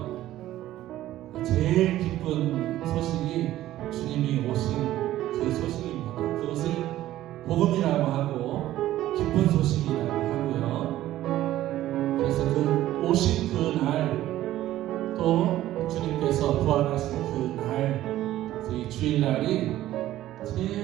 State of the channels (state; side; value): quieter; left; 14.2 dB